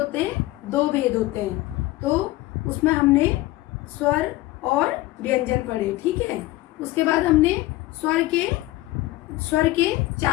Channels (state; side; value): quieter; right; 18.0 dB